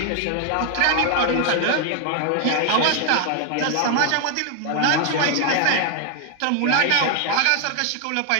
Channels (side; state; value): both; different; correlation 0.01